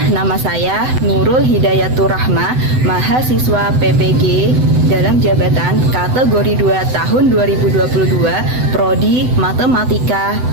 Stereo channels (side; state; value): left; late; 7.9 ms